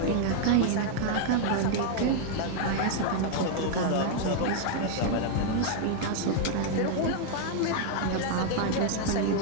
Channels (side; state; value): both; different; correlation 0.00